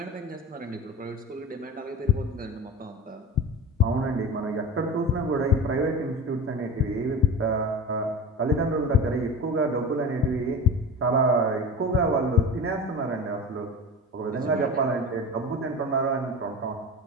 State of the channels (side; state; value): both; normal; correlation 0.31